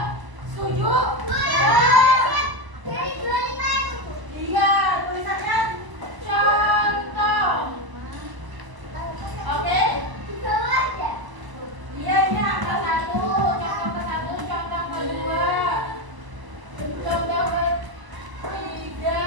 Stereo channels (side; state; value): left; late; 1.0 ms